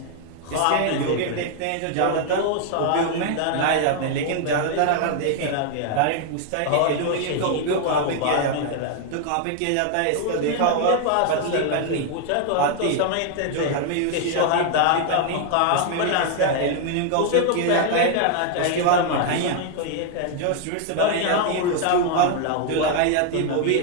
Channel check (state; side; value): different; both; correlation 0.00